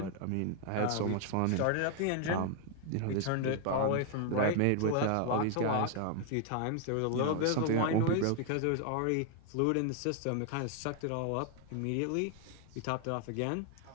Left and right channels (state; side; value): different; both; correlation 0.00